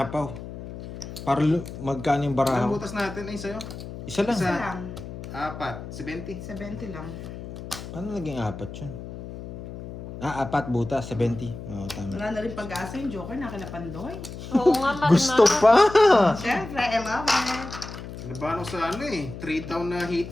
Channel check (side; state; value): left; noise; hum, 11 dB below the sound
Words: Para magkano yung Ang barahaw. butas natin ay sa'yo. Isa lang. Isa Isa. lang. 4. 70. 70 lang. Paano naging apat yun? 4 butas. 70. Oo, tama. Wala na rin pag-asa yung joker na kila Pandoy. Oo nga, Marma. Gusto pa! Siyempre, I love it. Nabahan ko sa 3 down na